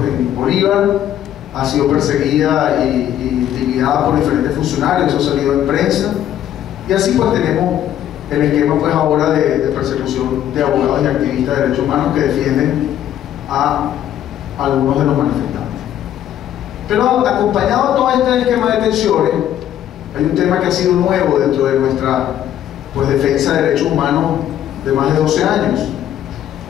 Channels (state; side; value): quieter; right; 11.2 dB